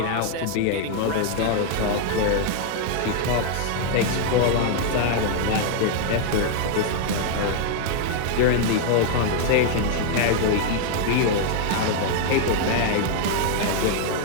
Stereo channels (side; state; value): both; different; correlation 0.00